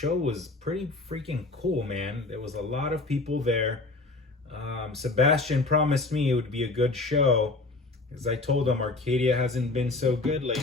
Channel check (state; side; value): quieter; right; 3.2 dB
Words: was pretty freaking cool, man. There was a lot of people there. Sebastian promised me it would be a good show, because I told him Arcadia hasn't been so good